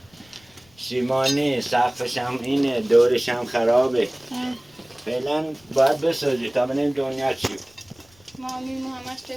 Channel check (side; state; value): left; noise; rumble, 30 dB below the sound